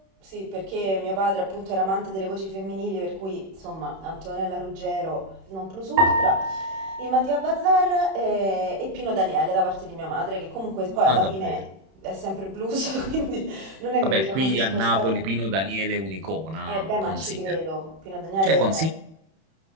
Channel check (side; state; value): left; late; 31 ms